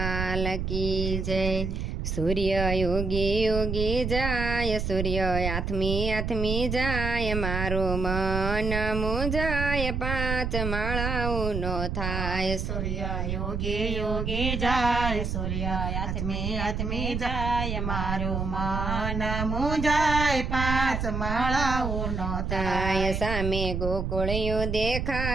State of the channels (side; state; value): right; noise; rumble, 2 dB below the sound